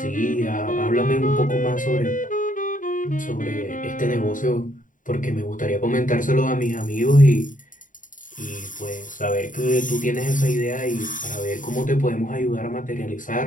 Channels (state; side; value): late; right; 0.38 ms